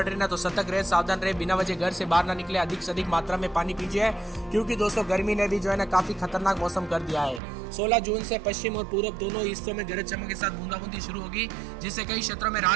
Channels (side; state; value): left; drops out; at 7.4 s